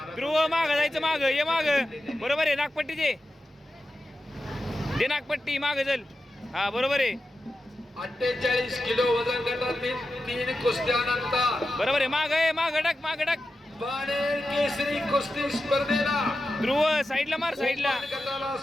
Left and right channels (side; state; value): both; normal; correlation 0.91